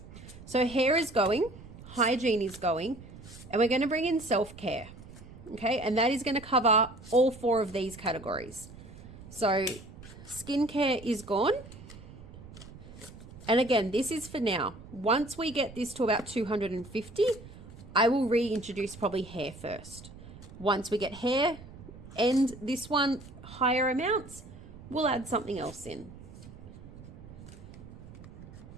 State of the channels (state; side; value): noise; right; rumble, 16 dB below the sound